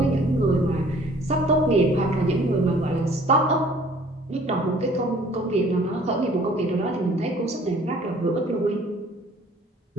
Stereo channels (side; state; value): both; normal; correlation 0.54